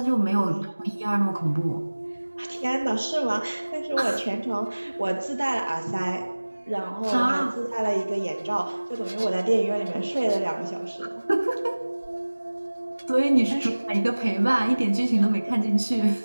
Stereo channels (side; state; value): both; inverted; correlation -1.00